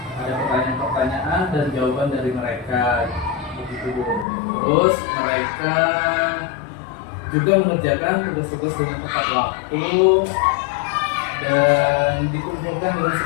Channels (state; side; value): drops out; right; at 4.2 s